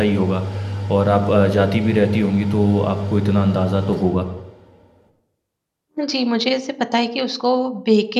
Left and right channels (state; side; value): identical; both; correlation 1.00